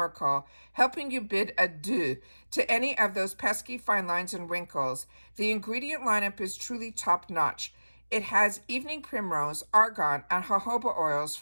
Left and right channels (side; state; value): both; inverted; correlation -1.00